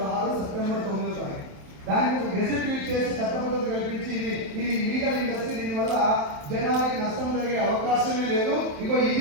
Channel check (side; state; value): left; late; 27 ms